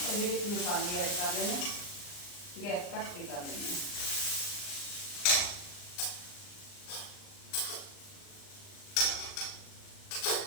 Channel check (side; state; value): right; late; 39 ms